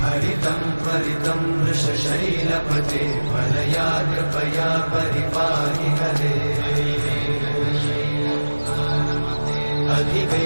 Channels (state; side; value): inverted; both; correlation -1.00